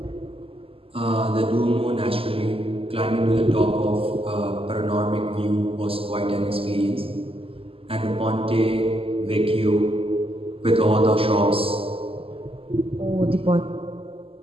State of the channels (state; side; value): late; left; 0.27 ms